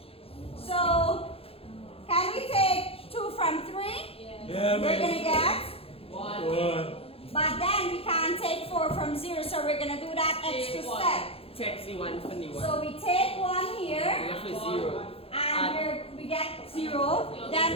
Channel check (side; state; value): right; late; 0.28 ms